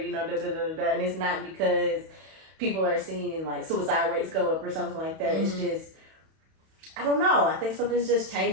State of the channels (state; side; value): late; left; 31 ms